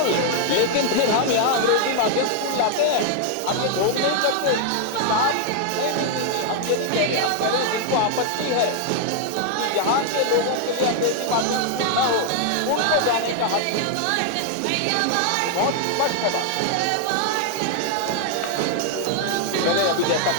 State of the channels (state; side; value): different; both; correlation 0.00